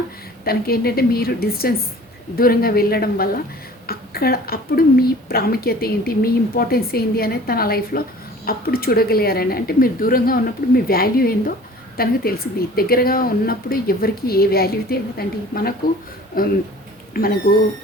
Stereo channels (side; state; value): both; normal; correlation 0.46